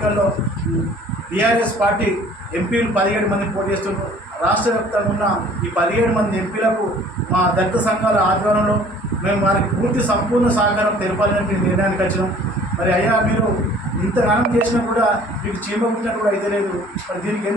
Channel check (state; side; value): normal; both; correlation 0.52